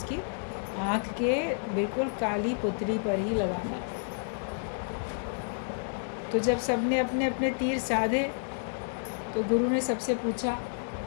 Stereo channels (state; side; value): silent; right; digital silence